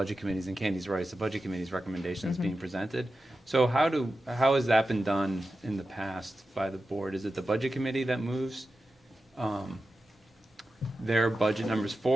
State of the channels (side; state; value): both; normal; correlation 0.92